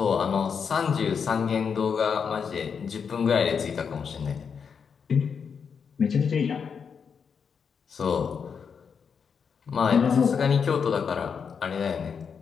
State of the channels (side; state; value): right; quieter; 6.4 dB